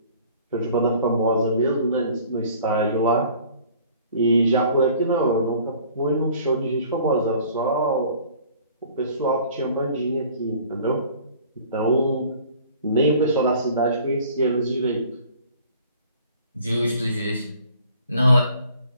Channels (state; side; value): inverted; both; correlation -0.52